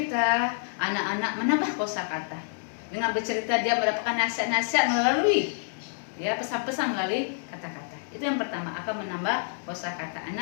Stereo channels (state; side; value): silent; right; digital silence